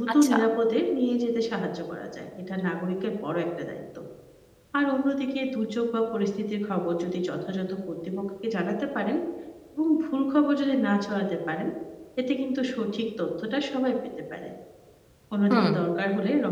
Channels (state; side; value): identical; both; correlation 1.00